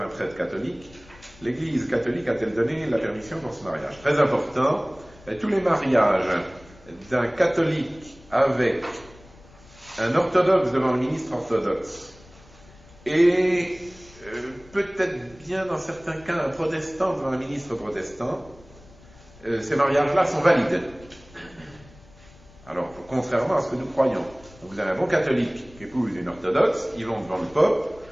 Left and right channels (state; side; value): noise; left; rumble, 24 dB below the sound